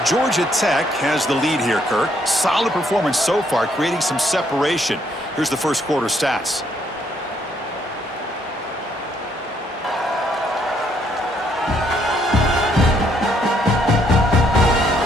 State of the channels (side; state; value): both; normal; correlation 0.70